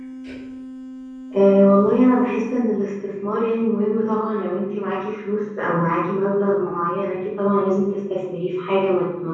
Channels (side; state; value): both; identical; correlation 1.00